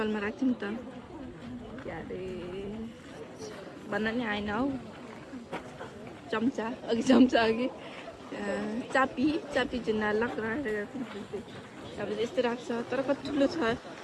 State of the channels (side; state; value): both; identical; correlation 1.00